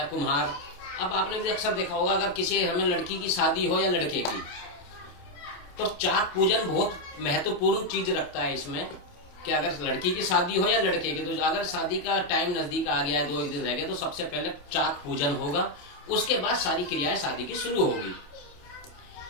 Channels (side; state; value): right; late; 28 ms